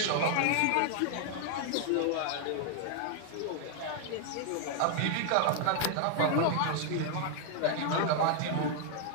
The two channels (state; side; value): different; both; correlation 0.00